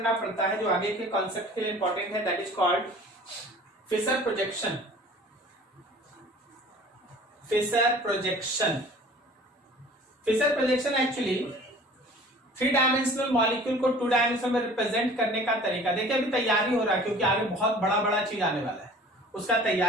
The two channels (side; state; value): both; normal; correlation 0.46